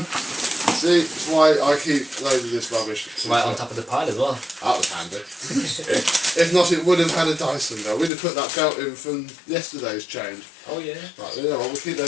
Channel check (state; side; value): drops out; right; at 8.1 s